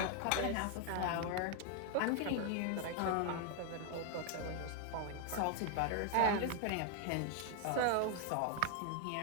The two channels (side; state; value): both; different; correlation 0.00